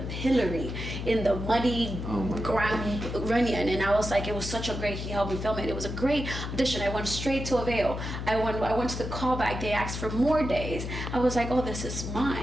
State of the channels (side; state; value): left; noise; hum, 5 dB below the sound